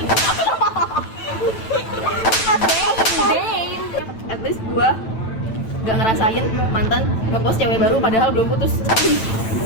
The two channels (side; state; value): right; late; 9.0 ms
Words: At least gue nggak ngerasain mantan ngepost cewek baru padahal belum putus.